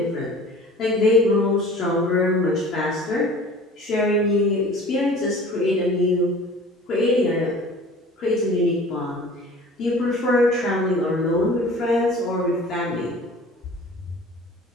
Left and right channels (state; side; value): normal; both; correlation 0.44